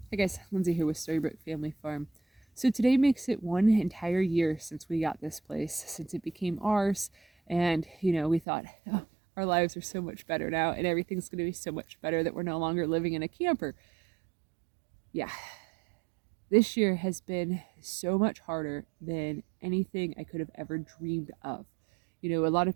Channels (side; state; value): left; drops out; at 8.4 s